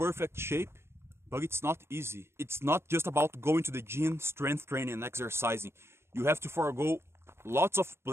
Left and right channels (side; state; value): left; late; 0.12 ms